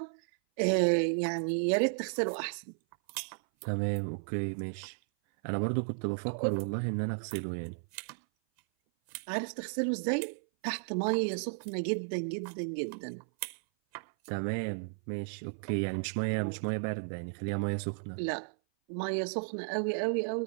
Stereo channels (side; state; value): left; silent; 55 dB below the other